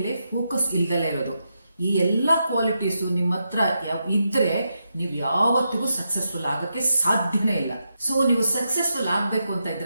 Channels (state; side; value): inverted; both; correlation -0.85